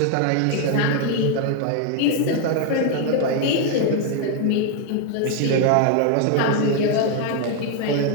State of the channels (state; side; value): different; both; correlation 0.01